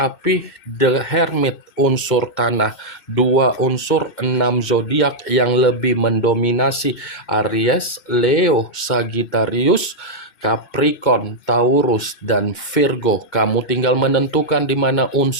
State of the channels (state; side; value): late; right; 2.2 ms